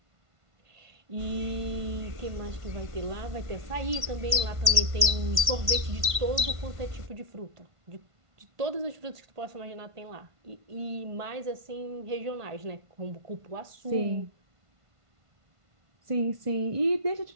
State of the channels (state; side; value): late; left; 1.5 ms